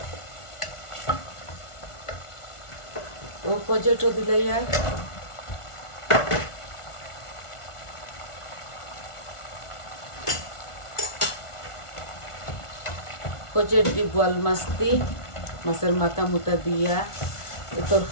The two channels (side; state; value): right; late; 1.4 ms